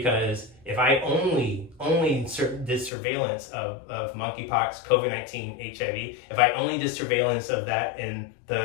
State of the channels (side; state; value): right; drops out; at 2.9 s